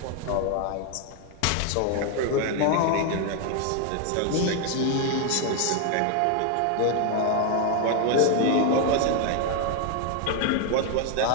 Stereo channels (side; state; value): both; different; correlation 0.01